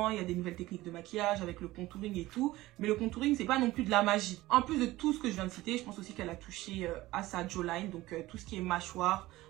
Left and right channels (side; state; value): left; quieter; 17.7 dB